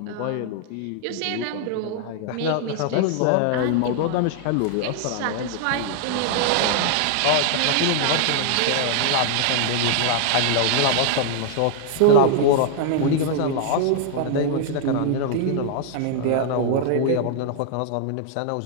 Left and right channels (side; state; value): both; different; correlation 0.00